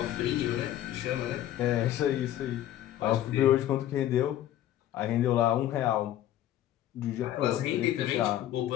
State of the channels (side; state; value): right; quieter; 12.6 dB